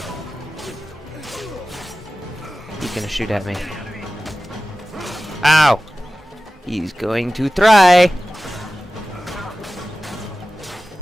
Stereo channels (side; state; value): both; normal; correlation 0.95